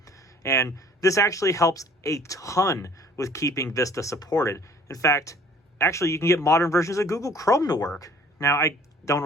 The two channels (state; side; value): normal; both; correlation 0.53